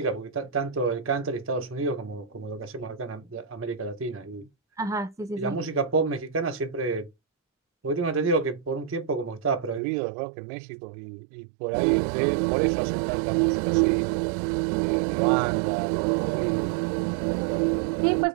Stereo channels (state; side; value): drops out; left; at 9.8 s